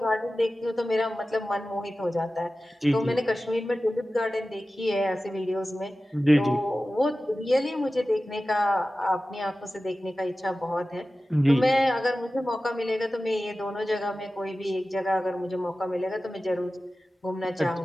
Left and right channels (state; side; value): normal; both; correlation 0.95